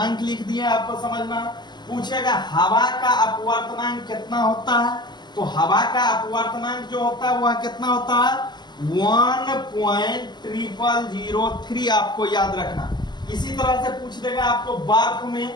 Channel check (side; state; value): right; late; 0.21 ms